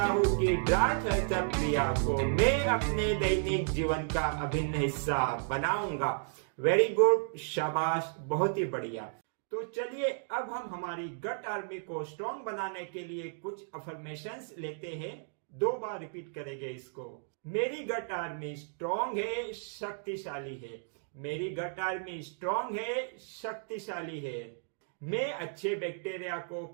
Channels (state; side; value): silent; left; digital silence